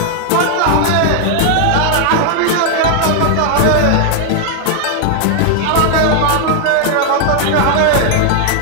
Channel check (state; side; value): different; both; correlation 0.00